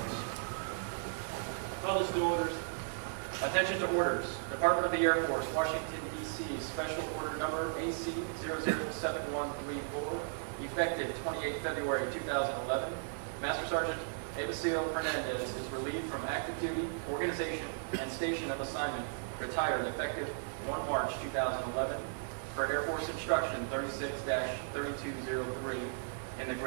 Public to orders. Attention to orders. Department of the Air Force, Washington, D.C. Special Order Number AC-007134, effective 28 February 2011. Master Sergeant MSgt Fernandez is relieved from active duty, organization, and station of assignment, retired effective 1 March 2011, per Air Force Instruction 36-3203, in the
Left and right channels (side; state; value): left; silent; digital silence